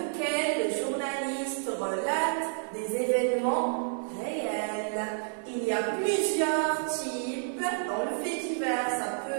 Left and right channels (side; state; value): left; silent; digital silence